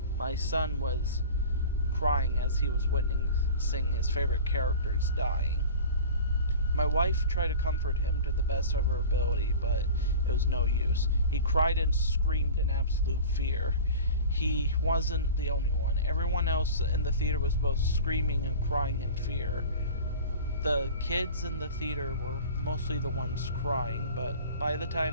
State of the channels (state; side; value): inverted; both; correlation -0.37